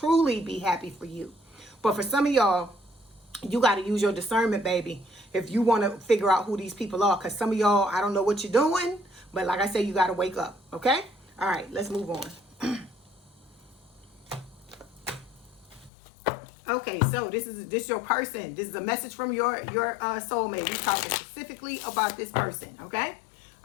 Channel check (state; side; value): drops out; right; at 15.9 s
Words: be happy for you. But for some of y'all, You got to use your discernment, baby, if you want to figure out who these people are. Because some of y'all, I don't know what you're doing, but like I said, you got to wake up, okay? All right, let's move on. Okay, so this is your person. This is a message from your soulmate. We're talking specifically about this person, okay?